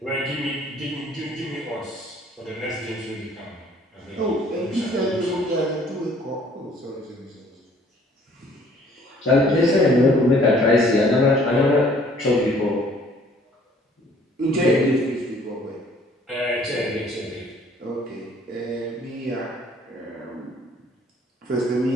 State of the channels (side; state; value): both; normal; correlation 0.58